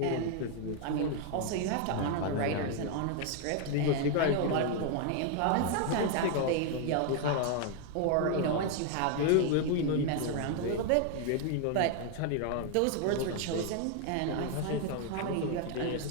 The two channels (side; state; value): both; different; correlation 0.00